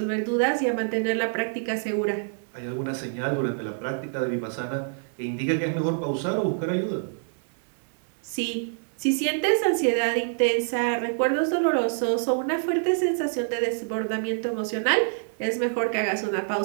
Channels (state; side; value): silent; left; digital silence